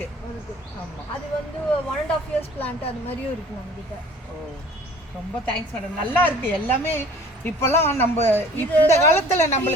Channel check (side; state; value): both; normal; correlation 0.49